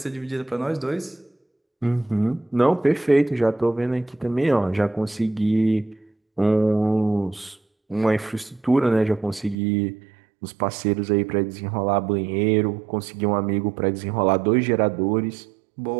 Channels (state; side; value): drops out; left; at 9.6 s